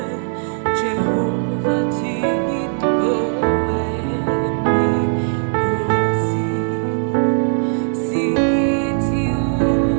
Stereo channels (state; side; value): silent; left; digital silence